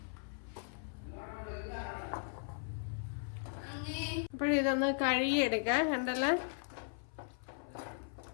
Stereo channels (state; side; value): silent; right; 53 dB below the other